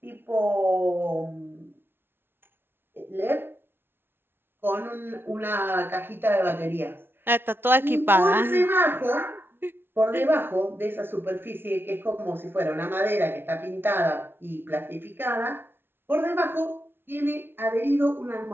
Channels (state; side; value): late; left; 0.11 ms